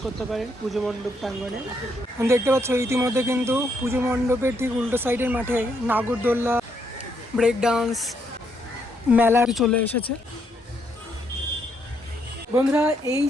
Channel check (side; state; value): both; normal; correlation 0.75